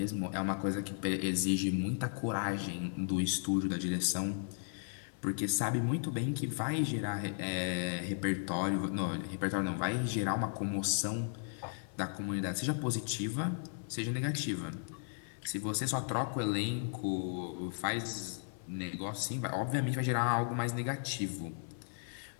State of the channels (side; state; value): right; silent; digital silence